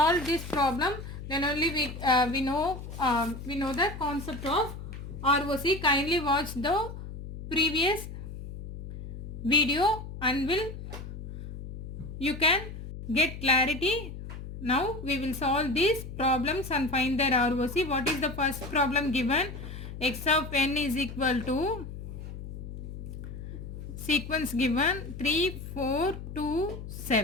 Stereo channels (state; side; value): noise; left; hum, 10 dB below the sound